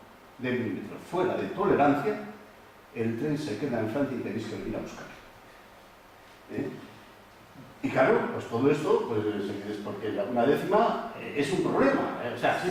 de milímetro fuera de tolerancia, el tren se queda en Francia y tenéis que venir a buscar. Y claro, pues todo esto pues, es porque una décima es un problema. O sea, sí,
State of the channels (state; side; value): identical; both; correlation 1.00